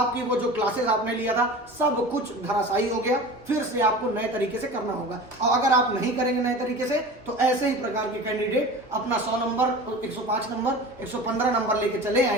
वो जो क्लासेस आपने लिया था, सब कुछ धराशायी हो गया। फिर से आपको नए तरीके से करना होगा, और अगर आप नहीं करेंगे नए तरीके से तो ऐसे ही प्रकार के कैंडिडेट अपना 100 नंबर, 105 नंबर, 115 नंबर लेके चले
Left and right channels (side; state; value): both; normal; correlation 0.35